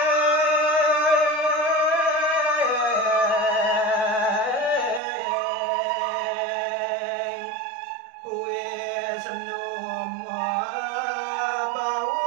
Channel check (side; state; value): left; drops out; at 5.0 s